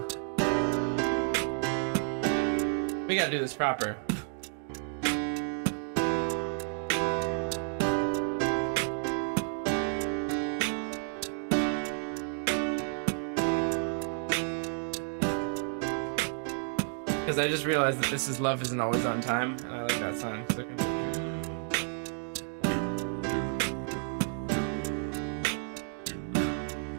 We gotta do this proper. Because I just realized that this is Love Isn't Always on Time, and I like that song. So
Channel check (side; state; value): left; silent; 57 dB below the other